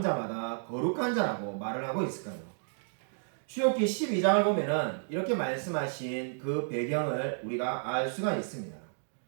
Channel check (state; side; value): silent; left; digital silence